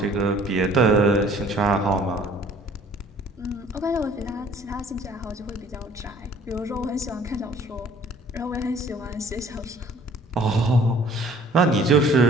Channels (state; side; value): normal; both; correlation 0.55